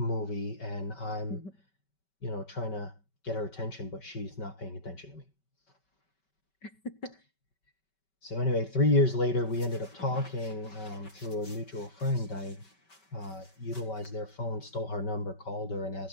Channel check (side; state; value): right; late; 5.2 ms